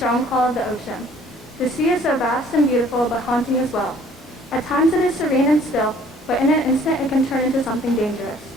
call of the ocean. The sea is so vast and beautiful, but haunting as well. At times it is serene and still, but in an instant it can turn into something dangerous.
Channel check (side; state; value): both; normal; correlation 0.56